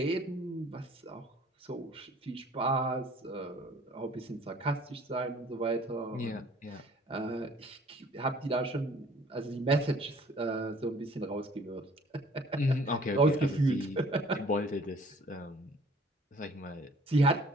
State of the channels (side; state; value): both; normal; correlation 0.54